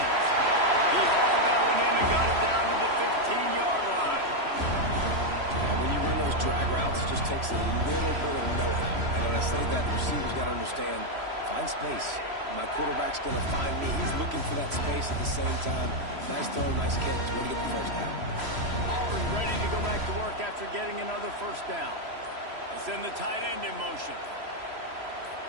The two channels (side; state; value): left; late; 3.0 ms